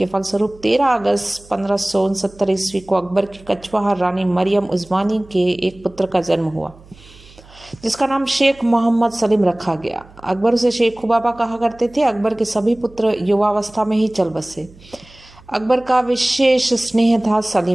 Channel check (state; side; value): noise; right; hum, 24 dB below the sound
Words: फलस्वरूप 13 अगस्त 1569 ईस्वी को अकबर की कछवाहा रानी मरियम उस्मानी के एक पुत्र का जन्म हुआ, जिसका नाम शेख मोहम्मद सलीम रखा गया। अकबर उसे शेख खुबाबा कहा करते थे। अकबर के सभी पुत्र युवावस्था में ही चल बसे। अकबर का विशेष स्नेह था